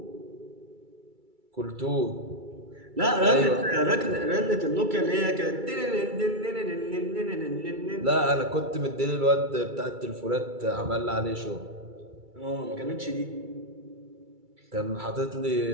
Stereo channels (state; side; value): late; left; 2.3 ms